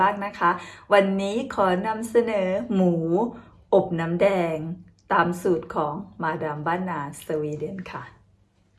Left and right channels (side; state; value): both; identical; correlation 1.00